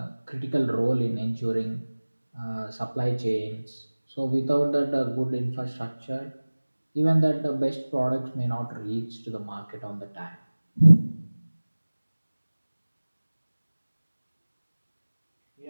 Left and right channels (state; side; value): inverted; both; correlation -1.00